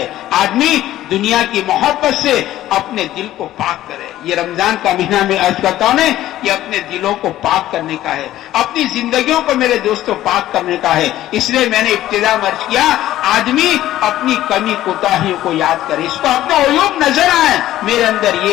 آدمی دنیا کی محبت سے اپنے دل کو پاک کرے. یہ رمضان کا مہینہ میں عرض کرتا ہوں یہ اپنے دلوں کو پاک کرنے کا ہے، اپنی زندگیوں کو میرے دوستوں پاک کرنے کا ہے. اس لیے میں نے ابتدا میں عرض کیا آدمی اپنی کمی کوتاہیوں کو یاد کرے، اس کو اپنا عیوب نظر آئے، میرے اندر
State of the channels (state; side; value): quieter; right; 14.0 dB